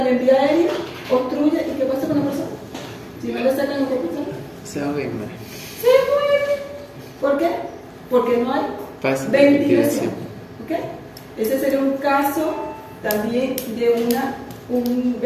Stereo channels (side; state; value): both; identical; correlation 1.00